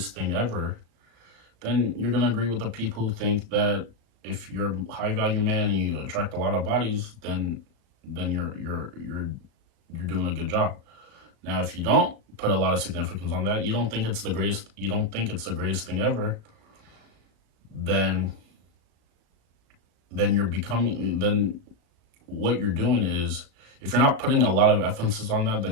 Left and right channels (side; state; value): left; late; 36 ms